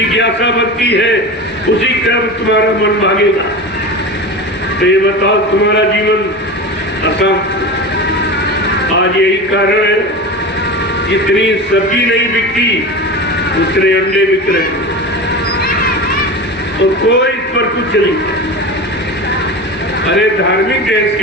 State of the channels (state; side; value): normal; both; correlation 0.28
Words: बनती है, उसी कर्म तुम्हारा मन भागेगा। तो ये बताओ तुम्हारा जीवन अशांत। आज यही कारण है जितनी सब्जी नहीं बिकती उतने अंडे बिक रहे हैं, तो कोई इस पर कुछ नहीं। अरे धार्मिक देश